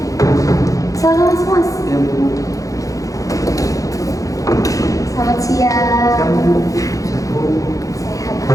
Selamat mas. Ya Bu. Selamat siang. Siang Bu. Siang Bu. Sehat.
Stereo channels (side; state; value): right; late; 0.16 ms